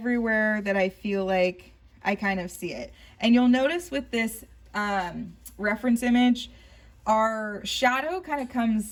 that I feel like I kind of see it. And you'll notice with this reference image, our shadow kind of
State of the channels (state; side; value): identical; both; correlation 1.00